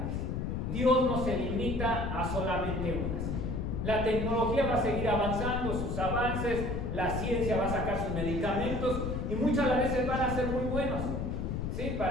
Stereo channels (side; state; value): left; noise; rumble, 2 dB below the sound